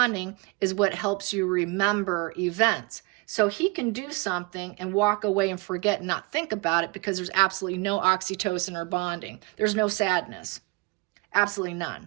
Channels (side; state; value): left; quieter; 26.9 dB